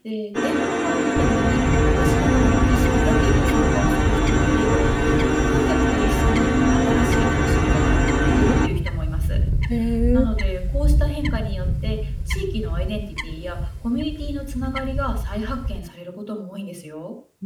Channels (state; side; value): identical; both; correlation 1.00